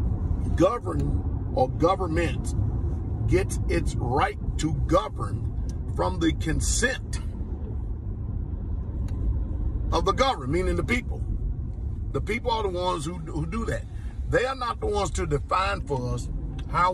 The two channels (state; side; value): identical; both; correlation 1.00